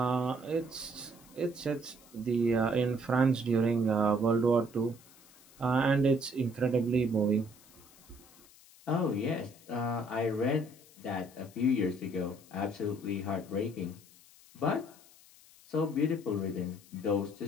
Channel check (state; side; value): noise; left; hiss, 24 dB below the sound